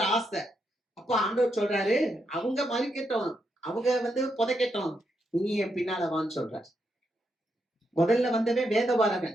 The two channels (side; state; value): both; normal; correlation 0.81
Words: ஆசை. அப்ப ஆண்டவர் சொல்றாரு, அவங்க மறிக்கட்டும், அவங்க வந்து புதைக்கட்டும், நீ என் பின்னால வான்னு சொல்றாரு. முதல்ல வந்தவன் வேதபாரகன்,